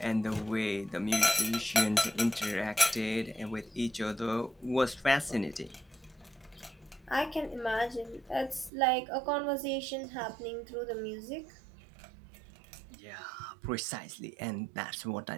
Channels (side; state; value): left; drops out; at 8.7 s